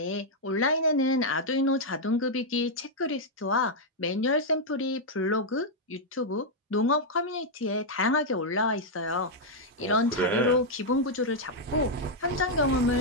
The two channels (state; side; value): normal; both; correlation -0.03